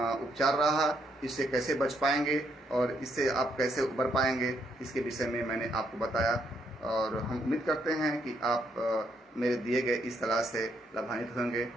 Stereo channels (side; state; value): both; normal; correlation 0.74